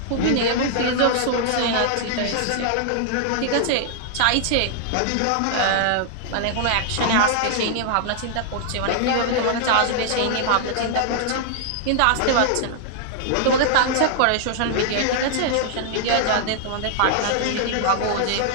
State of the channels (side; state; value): both; different; correlation -0.01